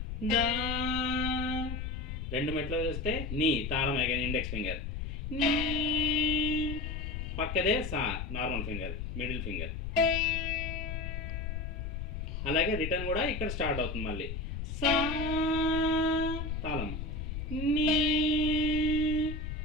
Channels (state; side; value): noise; left; rumble, 5 dB below the sound